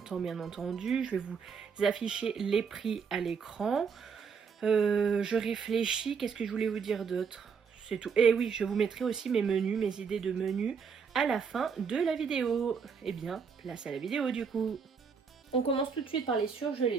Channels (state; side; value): quieter; left; 6.0 dB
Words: bien entendu. Je vais vous afficher les prix à l'écran. Je réfléchis, qu'est-ce que je voulais vous dire d'autre? C'est tout. Et oui, je vous mettrai aussi mes menus, mes idées de menus à la fin de la vidéo. Eh bien, place à la vidéo du coup. On commence tout de suite par les surgelés.